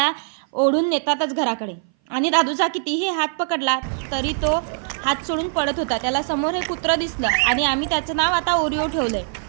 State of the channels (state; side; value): silent; left; 59 dB below the other